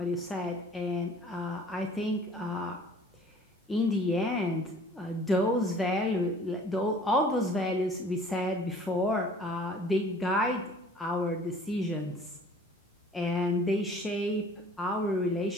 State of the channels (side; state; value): both; normal; correlation 0.51